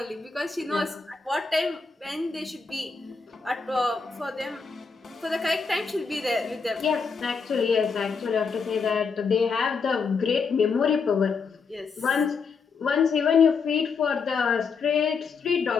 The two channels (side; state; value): right; quieter; 5.2 dB